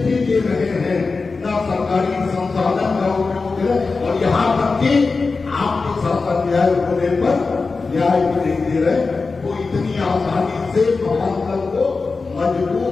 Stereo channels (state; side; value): quieter; right; 4.2 dB